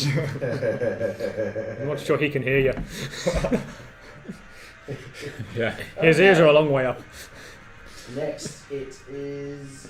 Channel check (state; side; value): identical; both; correlation 1.00